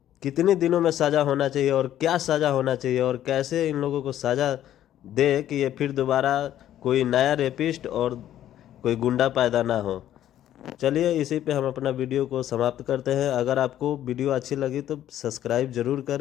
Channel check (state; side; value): quieter; right; 11.9 dB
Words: कितने दिनों में सज़ा होना चाहिए और क्या सज़ा होना चाहिए और कैसे इन लोगों को सज़ा दे कि ये फिर दोबारा कोई नया रेपिस्ट और कोई गुंडा पैदा ना हो। चलिए इसी पे हम अपना वीडियो को समाप्त करते हैं। अगर आपको वीडियो अच्छी लगी तो सब्सक्राइब ज़रूर